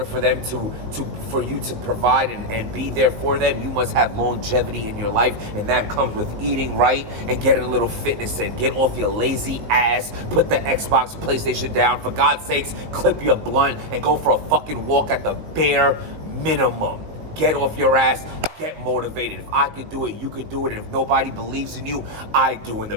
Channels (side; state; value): left; late; 19 ms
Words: for them for you to provide and be there for them, you must have longevity in your life. And that comes with eating right and getting a little fitness in. Get off your lazy ass. Put the Xbox, PlayStation down. For God's sakes, clip your blunt and go for a fucking walk at the bare minimum. Get off your ass. Get motivated. If I could do it, you could do it. And if nobody believes in you, I do. And the